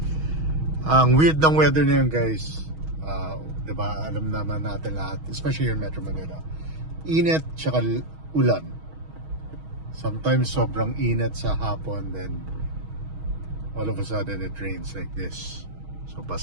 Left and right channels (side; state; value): left; late; 6.3 ms